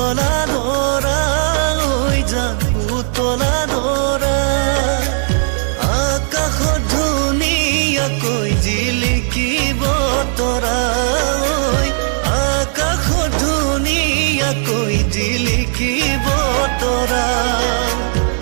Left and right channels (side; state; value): left; silent; 69 dB below the other